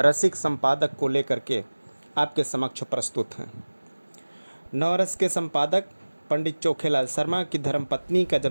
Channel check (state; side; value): inverted; both; correlation -1.00